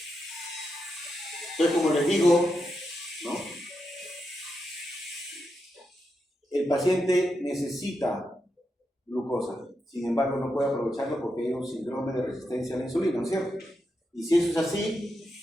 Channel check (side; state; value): both; normal; correlation 0.85